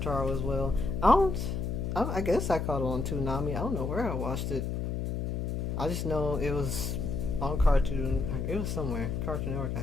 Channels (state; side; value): noise; left; hum, 2 dB below the sound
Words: as well. I guess I caught it on Toonami. I don't know where I watched it. I just know it was on Cartoon. It was somewhere Cartoon Network,